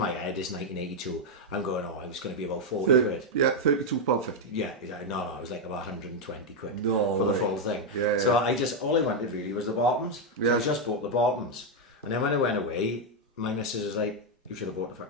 head, it's 1982. I'm going, oh, it was going to be about 40 quid. Yeah, £32.50. Yeah, exactly. No, it was like about 120 quid No for the way. full thing. Yeah, so all I wanted really was the bottoms. So Yeah. I just bought the bottoms. And then when I went away, my missus was like, you should have bought the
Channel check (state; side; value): normal; both; correlation 0.02